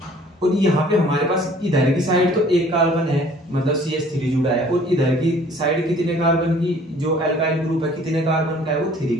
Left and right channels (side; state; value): both; normal; correlation 0.54